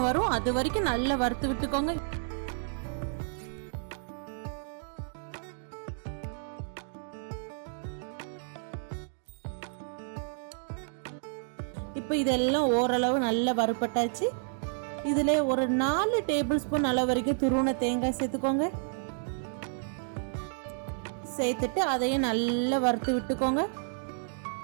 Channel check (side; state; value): left; silent; digital silence